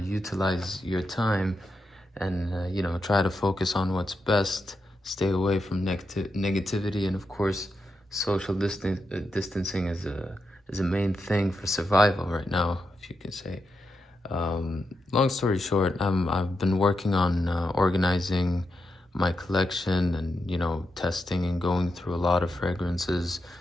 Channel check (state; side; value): normal; both; correlation 0.86